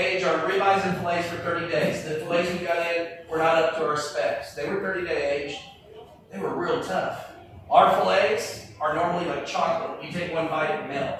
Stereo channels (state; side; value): identical; both; correlation 1.00